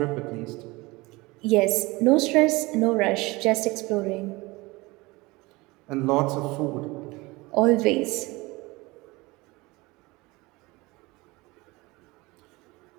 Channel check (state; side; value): quieter; left; 22.8 dB